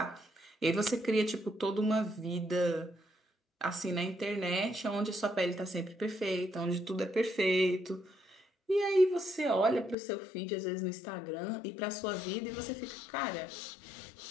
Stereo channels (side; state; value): right; drops out; at 10.0 s